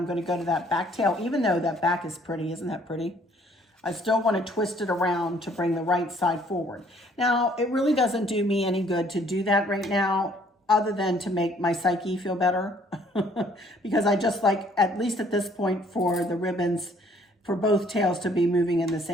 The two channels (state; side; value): normal; both; correlation 0.61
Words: going to go to that back tail, even though that back is pretty. Isn't that pretty? I still want to twist it around to bring the right side forward. Now, it really doesn't do me any good to do that right now, other than to make my psyche feel better. Because I just like, at least at this point, for the ribbons, for both tails to be moving in the